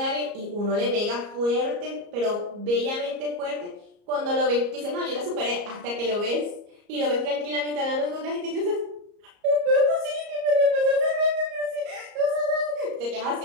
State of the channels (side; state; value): left; late; 34 ms